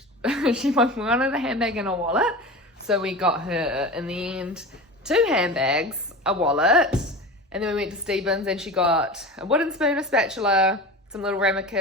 she wanted a handbag and a wallet. So we got her, in the end, 2 handbags, a wallet, and then we went to Stevens and she got a wooden spoon, a spatula, some little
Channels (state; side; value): normal; both; correlation 0.31